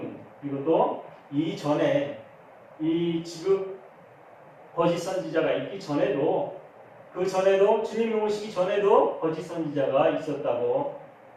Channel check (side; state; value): both; identical; correlation 1.00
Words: 그리고 또 이전에 이 지금 거짓 선지자가 있기 전에도 그 전에도 주님이 오시기 전에도 거짓 선지자가 있었다고